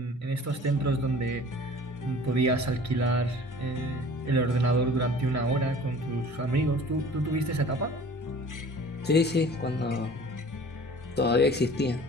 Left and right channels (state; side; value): normal; both; correlation 0.46